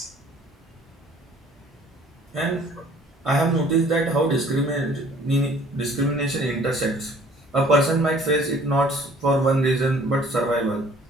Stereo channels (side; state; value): both; normal; correlation 0.55